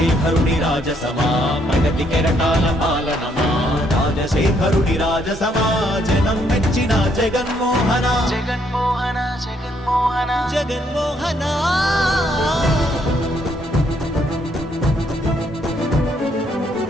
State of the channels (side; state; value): both; normal; correlation 0.71